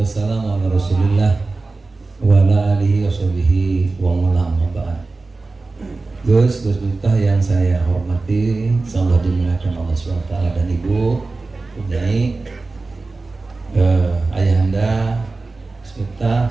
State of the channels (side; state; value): left; quieter; 3.5 dB